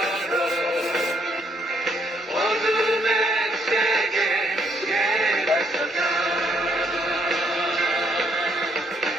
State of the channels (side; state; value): both; normal; correlation 0.71